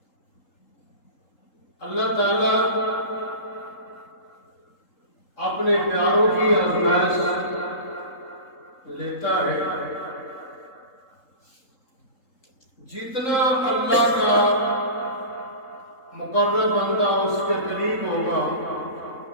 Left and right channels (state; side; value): late; right; 3.8 ms